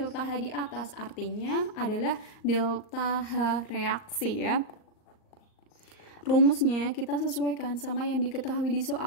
H di atas, artinya adalah delta H reaksi ya. Rumusnya kita sesuaikan sama yang diketahui di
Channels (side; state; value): right; late; 38 ms